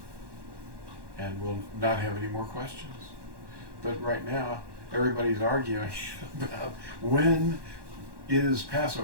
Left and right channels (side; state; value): left; late; 1.1 ms